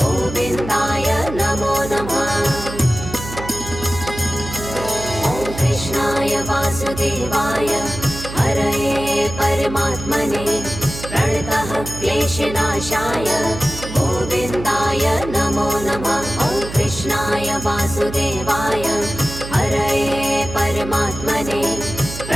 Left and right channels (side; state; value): right; noise; hum, 10 dB below the sound